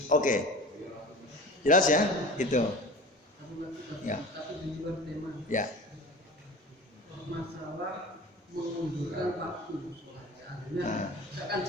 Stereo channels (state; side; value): normal; both; correlation 0.37